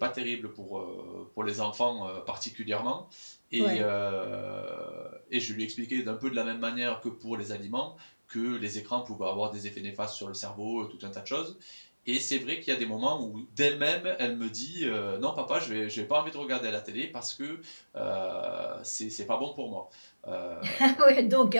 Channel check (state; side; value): inverted; both; correlation -1.00